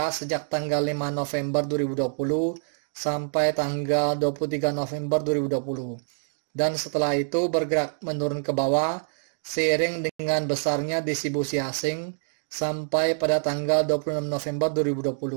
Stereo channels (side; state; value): left; silent; digital silence